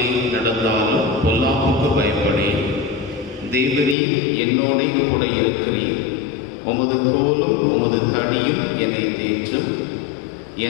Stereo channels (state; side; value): drops out; right; at 4.0 s